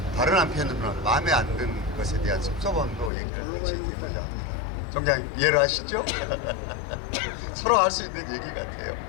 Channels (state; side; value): drops out; right; at 3.1 s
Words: 다른 한편으로는 마음에 안 드는 것에 대한 섭섭함도 얘기를 같이 드리고자 합니다. 총장님 이해를 하시죠? 서로 할 수 있는 얘기 같아요.